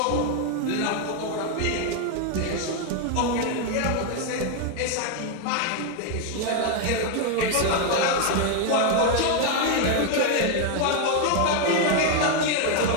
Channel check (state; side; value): different; both; correlation 0.01